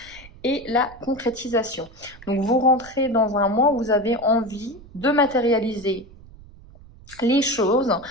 et la concrétisation. Donc, vous rentrez dans un mois où vous avez envie de matérialiser les choses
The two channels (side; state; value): right; noise; rumble, 21 dB below the sound